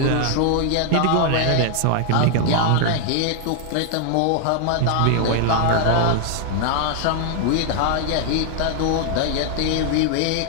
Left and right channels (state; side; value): different; both; correlation 0.00